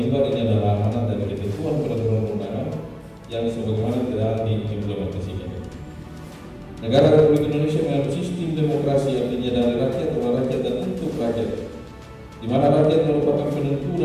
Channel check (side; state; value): both; identical; correlation 1.00